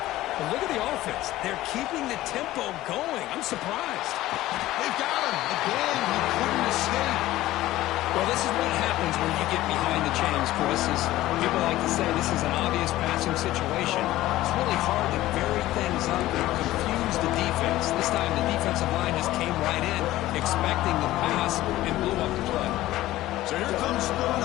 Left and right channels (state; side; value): quieter; right; 15.9 dB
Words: But look at the offense. They're keeping the tempo going. I'm surprised. They've got him. Again, he couldn't escape. Well, this is what happens when you get behind the chains, Chris. As people like to say, this is an obvious passing situation. It's really hard to vary things up and confuse the defense. This time, the defensive line just came right in, expecting the pass, and blew up the play. So here comes